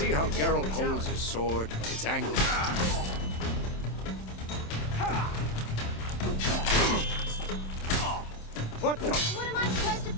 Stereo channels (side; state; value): right; late; 27 ms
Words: how Geralt holds his sword? It's angled. What the? What am I supposed to